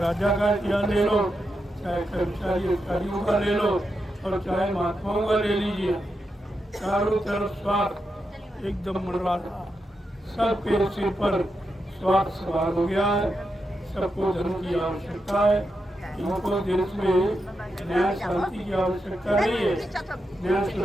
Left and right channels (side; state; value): both; normal; correlation 0.86